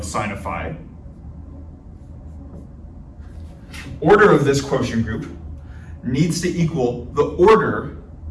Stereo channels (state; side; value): identical; both; correlation 1.00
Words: sine of phi, order of this quotient group, needs to equal the order